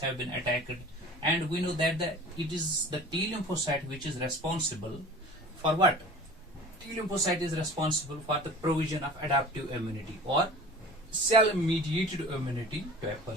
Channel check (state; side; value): normal; both; correlation 0.41